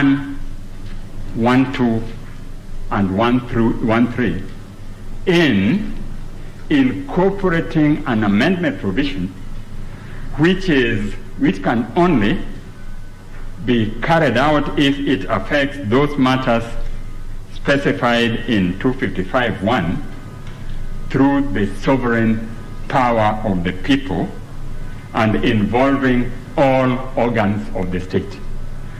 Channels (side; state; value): both; identical; correlation 1.00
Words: 1.2 and 1.3 in incorporating an amendment provision which can only be carried out if it affects those matters specified in 255(1) through the sovereign power of the people and involving all organs of the state.